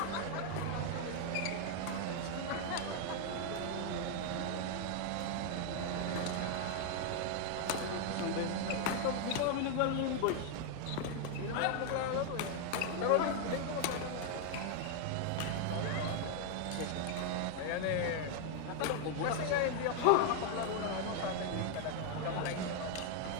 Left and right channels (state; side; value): different; both; correlation 0.00